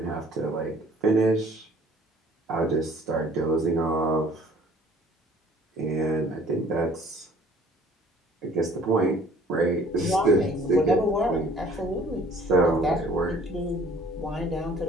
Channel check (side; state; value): both; normal; correlation 0.54